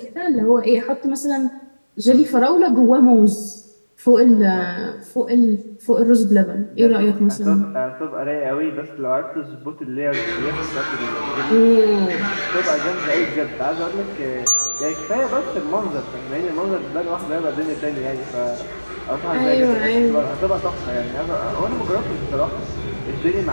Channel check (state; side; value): inverted; both; correlation -1.00